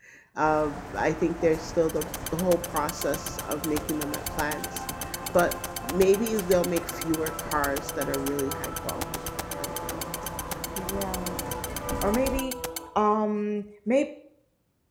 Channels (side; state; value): both; identical; correlation 1.00